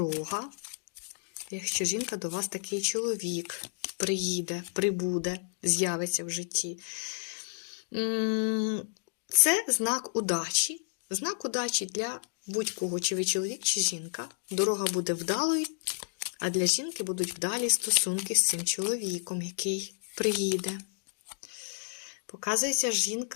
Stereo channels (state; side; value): silent; right; digital silence